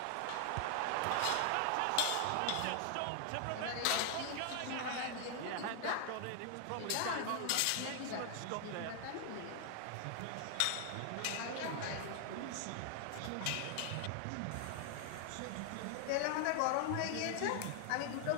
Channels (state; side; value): different; both; correlation 0.00